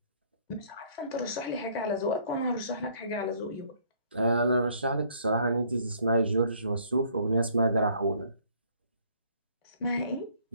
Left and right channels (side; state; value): both; inverted; correlation -0.61